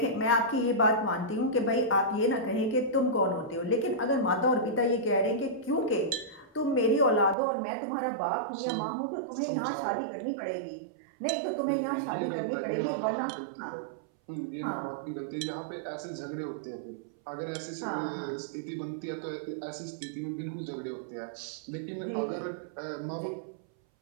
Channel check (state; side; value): drops out; left; at 7.4 s